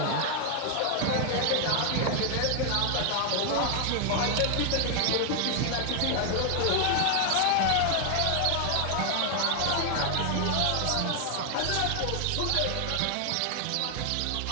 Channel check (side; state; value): both; different; correlation 0.00